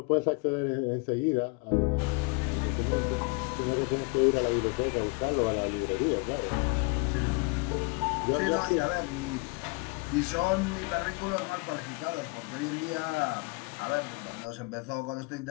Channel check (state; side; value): quieter; right; 30.2 dB